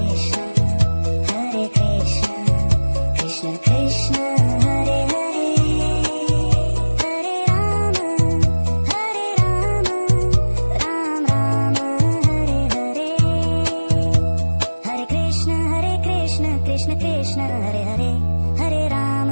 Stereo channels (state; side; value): inverted; both; correlation -1.00